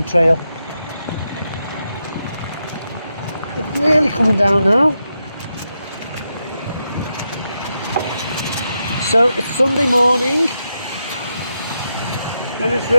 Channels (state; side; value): inverted; both; correlation -0.85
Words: Trail. It's really coming down now. So it's Sunday morning and it's